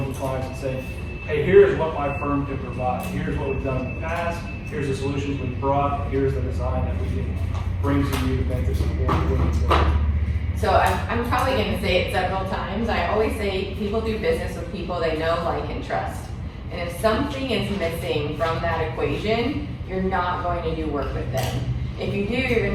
to clients and saying, hey, here's what my firm can provide. Here's what we've done in the past. Here's the solutions we've brought. Here's the design that we can bring to you to make this important. So I'm probably going to say it several times. I always say people do business with people they know, like, and trust. And if something is missing from that equation, you're not going to do work with them. If you do, you're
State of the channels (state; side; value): identical; both; correlation 1.00